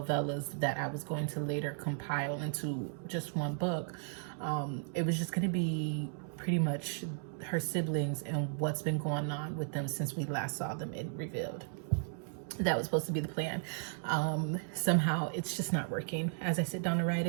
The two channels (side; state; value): left; silent; digital silence